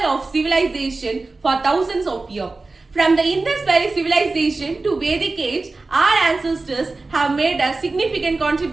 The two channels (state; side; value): quieter; left; 3.5 dB